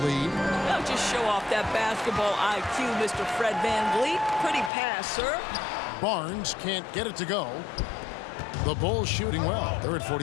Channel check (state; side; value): drops out; right; at 4.7 s